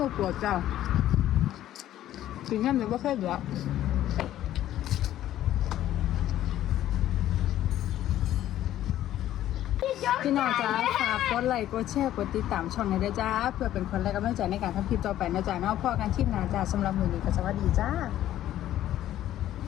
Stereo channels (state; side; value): quieter; right; 12.7 dB